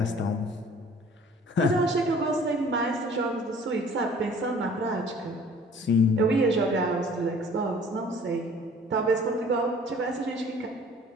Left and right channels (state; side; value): normal; both; correlation 0.51